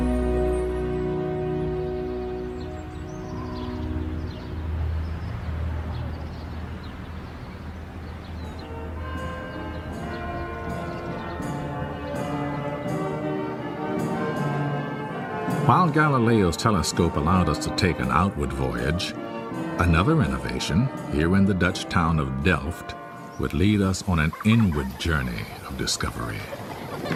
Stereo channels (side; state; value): both; identical; correlation 1.00